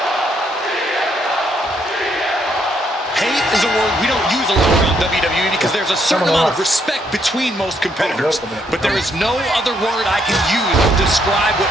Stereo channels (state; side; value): normal; both; correlation 0.73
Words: Hate is a word we don't use a lot around WWE because there's a certain amount of respect between most competitors. But there is no other word I can use to describe what